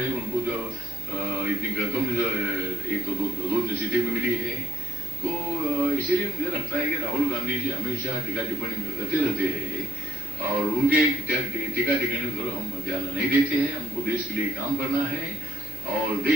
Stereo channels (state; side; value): noise; left; hum, 16 dB below the sound